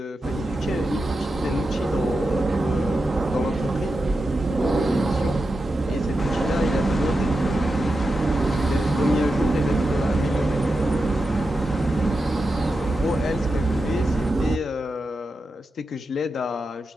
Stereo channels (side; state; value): both; normal; correlation 0.89